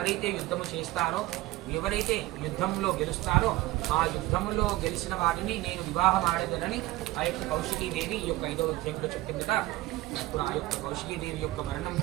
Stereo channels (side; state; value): left; quieter; 18.1 dB